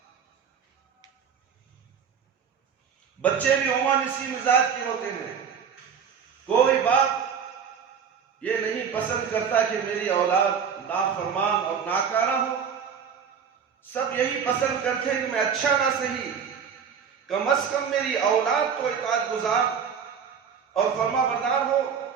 بچے بھی عموماً اسی مزاج کے ہوتے ہیں، کوئی باپ یہ نہیں پسند کرتا کہ میری اولاد نافرمان اور ناکارہ ہو، سب یہی پسند کرتے ہیں کہ میں اچھا نہ صحیح کم از کم میری اولاد تو اطاعت گزار اور فرما بردار ہو،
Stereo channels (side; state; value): left; quieter; 7.1 dB